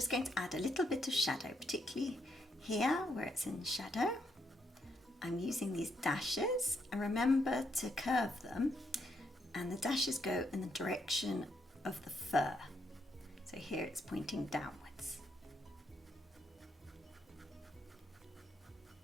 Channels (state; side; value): normal; both; correlation 0.77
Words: going to add a little bit of shadow, particularly here where it's in shadow. I'm using these dashes, and remember to curve them, and the dashes go in the direction of the fur. So here it's pointing downwards.